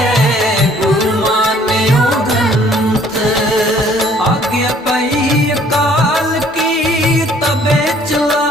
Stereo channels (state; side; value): normal; both; correlation 0.58